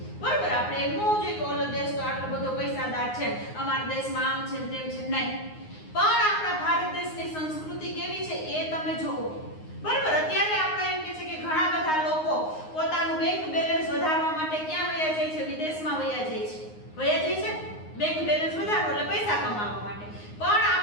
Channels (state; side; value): late; right; 9.6 ms